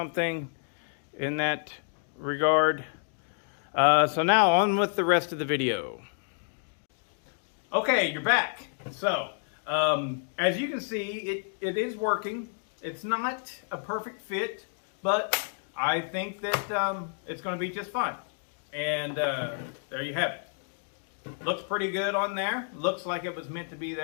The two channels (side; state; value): right; silent; 58 dB below the other